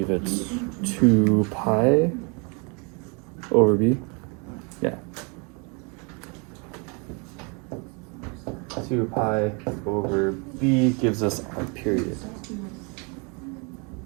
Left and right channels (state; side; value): quieter; left; 33.0 dB